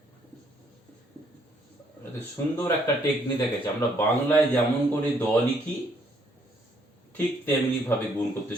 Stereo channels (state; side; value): normal; both; correlation 0.68